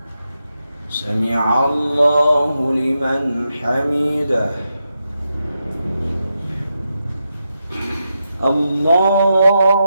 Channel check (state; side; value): inverted; both; correlation -0.86